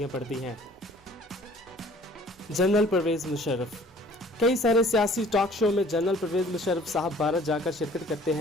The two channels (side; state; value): both; normal; correlation 0.53